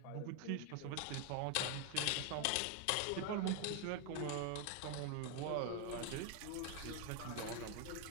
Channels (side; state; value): both; different; correlation 0.01